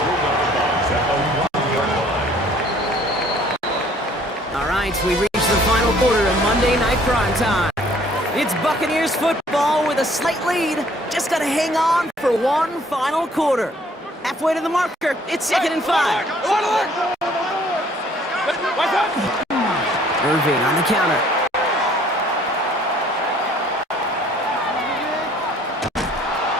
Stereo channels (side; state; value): both; normal; correlation 0.58